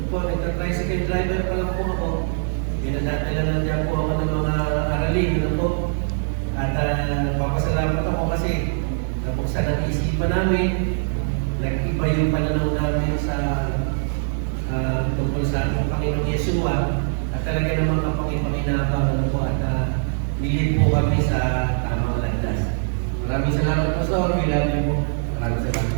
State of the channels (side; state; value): left; silent; digital silence